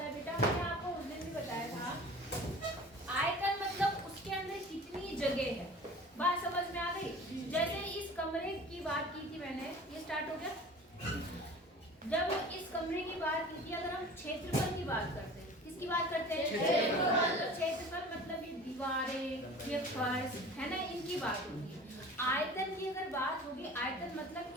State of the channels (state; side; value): normal; both; correlation 0.42